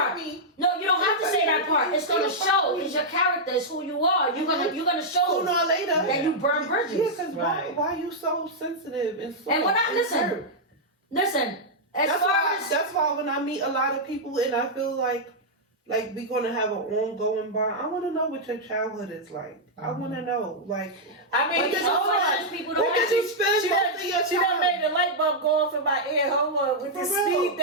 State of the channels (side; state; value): both; normal; correlation -0.06